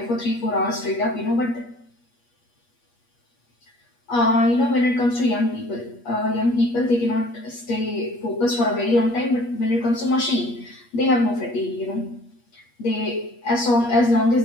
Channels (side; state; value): right; late; 8.4 ms